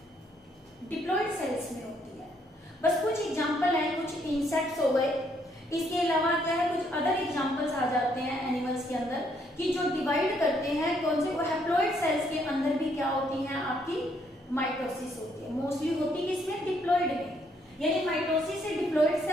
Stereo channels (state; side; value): normal; both; correlation 0.71